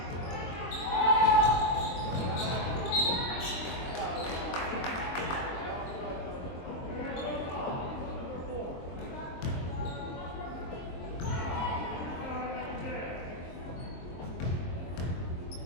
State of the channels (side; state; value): right; late; 23 ms